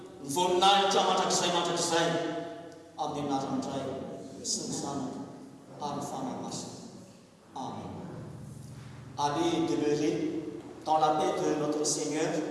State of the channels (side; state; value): both; identical; correlation 1.00